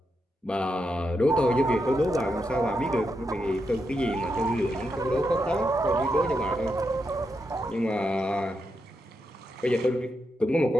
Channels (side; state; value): both; normal; correlation 0.84